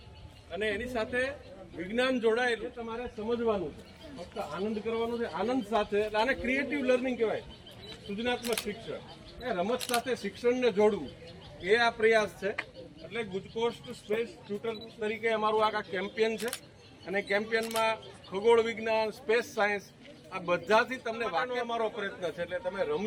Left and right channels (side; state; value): both; identical; correlation 1.00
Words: અને એની સાથે વિજ્ઞાન જોડાયેલું તમારે સમજવાનું છે. ફક્ત આનંદ કરવાનો છે, આનંદ સાથે. આને ક્રિએટિવ લર્નિંગ કહેવાય, સૃજનાત્મક શિક્ષણ. એ રમત સાથે શિક્ષણને જોડવું એ આ પ્રયાસ છે. એટલે ગુજકોસ્ટ સ્પેસ ટ્યુટર તરીકે અમારું આ કેમ્પેન છે અને કેમ્પેનમાં ખગોળ વિજ્ઞાન, સ્પેસ સાયન્સ આ બધાથી તમને વાંચવાનો અમારો પ્રયત્ન છે. એટલે તમે